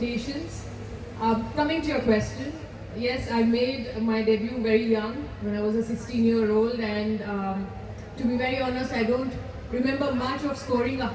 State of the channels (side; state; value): both; identical; correlation 1.00